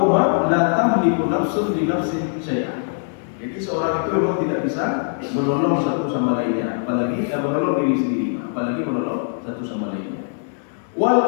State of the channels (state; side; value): silent; right; 65 dB below the other